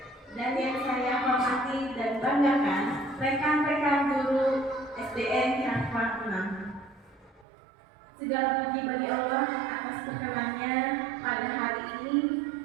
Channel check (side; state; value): left; drops out; at 7.5 s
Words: dan yang saya hormati dan banggakan rekan-rekan guru SDN Cangkuang 6. Segala puji bagi Allah atas perkenannya pada hari ini